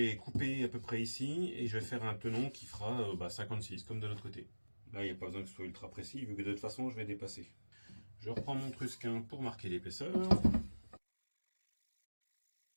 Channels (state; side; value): inverted; both; correlation -1.00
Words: couper à peu près ici et je vais faire un tenon qui fera 56 comme de l'autre côté. Là, il n'y a pas besoin que ce soit ultra précis vu que de toute façon, je vais dépasser. Je reprends mon trusquin pour marquer l'épaisseur.